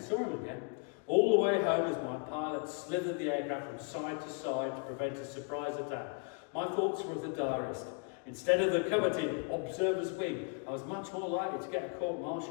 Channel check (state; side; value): quieter; right; 38.3 dB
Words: him again. All the way home, as my pilot slithered the aircraft from side to side to prevent a surprise attack, my thoughts were of the diarist. Instead of the coveted observer's wing, I was much more likely to get a